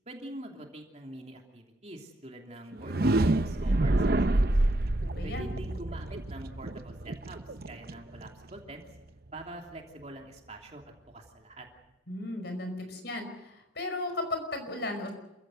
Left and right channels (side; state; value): both; normal; correlation 0.72